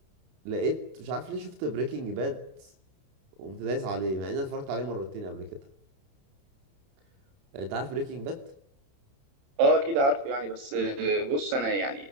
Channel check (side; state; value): left; late; 29 ms